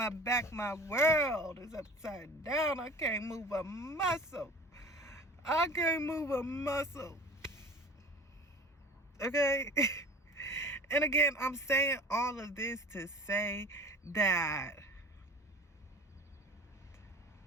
back, my world is upside down. I can't move a muscle. I can't move a muscle. Okay? And again, I'm saying all of this to say that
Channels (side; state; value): both; normal; correlation 0.41